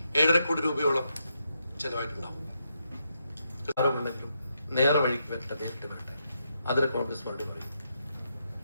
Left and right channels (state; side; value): inverted; both; correlation -0.81